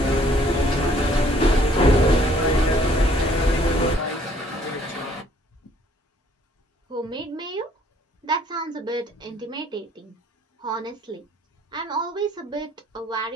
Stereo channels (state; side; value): normal; both; correlation 0.61